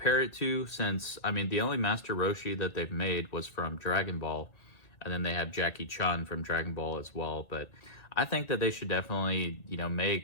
it to, since, I mean, the only Master Roshi that they've made was from Dragon Ball, and then they have Jackie Chun from Dragon Ball as well. But I think that they should definitely, you know,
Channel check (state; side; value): late; right; 1.8 ms